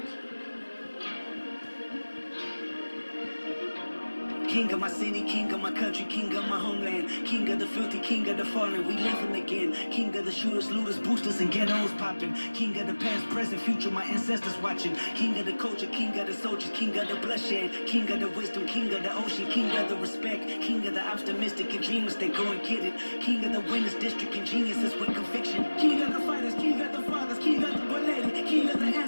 King of my city, king of my country, king of my homeland. King of the filthy, king of the fallen, we living again. King of the shooters, looters, boosters, and ghettos popping. King of the past, present, future, my ancestors watching. King of the culture, king of the soldiers, king of the bloodshed. King of the wisdom, king of the ocean, king of the respect. King of the optimistic and dreamers, they go and get it. King of the winners, district, and geniuses with conviction. King of the fighters, king of the fathers, king of the belated. King of the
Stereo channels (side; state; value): both; inverted; correlation -1.00